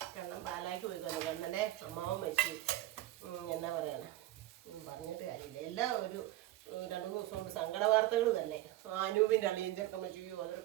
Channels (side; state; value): left; quieter; 15.4 dB